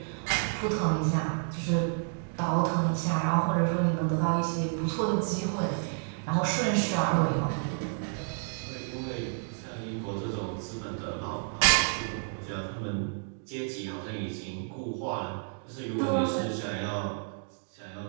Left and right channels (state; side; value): silent; left; 58 dB below the other